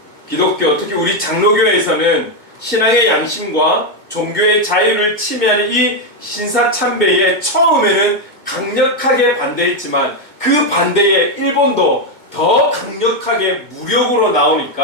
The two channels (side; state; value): left; late; 2.2 ms